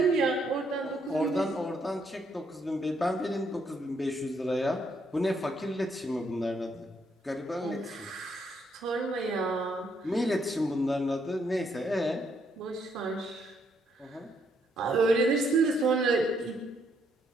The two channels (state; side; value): normal; both; correlation 0.73